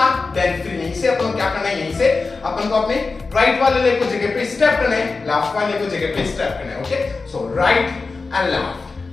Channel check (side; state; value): right; quieter; 4.1 dB